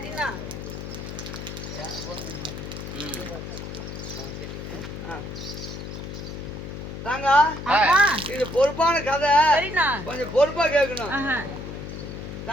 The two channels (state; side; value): noise; left; hum, 8 dB below the sound